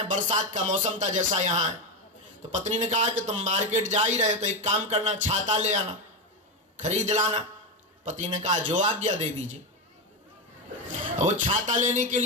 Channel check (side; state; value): both; normal; correlation 0.11